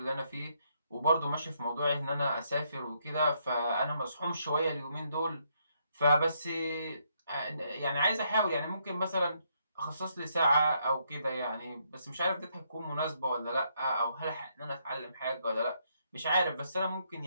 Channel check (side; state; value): both; inverted; correlation -0.74